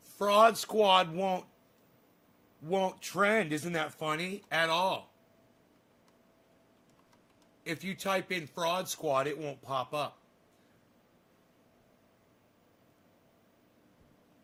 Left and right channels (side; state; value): both; identical; correlation 1.00